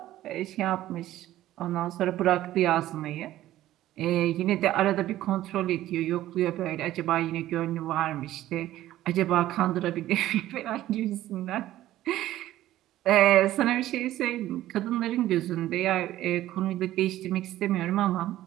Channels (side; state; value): left; quieter; 14.3 dB